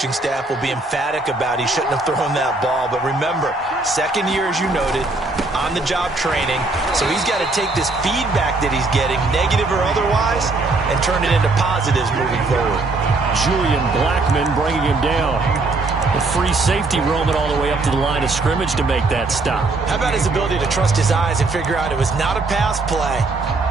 staff will be emphatic about he shouldn't have thrown that ball. But remember, second year, as you noted, on-the-job training, so he's got to take this feedback that he's getting, negative or otherwise, and turn it into positives moving forward. Julian Blackman bringing him down. A free safety roaming all the way up to the line of scrimmage to make that stop. How about his ability to trust his eyes and figure out it was not a pass play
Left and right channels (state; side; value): quieter; left; 3.3 dB